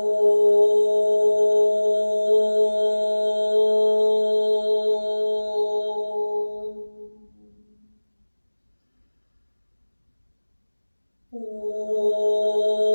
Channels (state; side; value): inverted; both; correlation -1.00